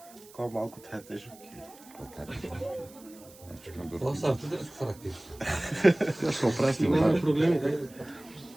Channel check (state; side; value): noise; right; hiss, 22 dB below the sound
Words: Кога малко тая тежък. Това са артитерски характер. Да ще опрасти. Нема проблеми, дај.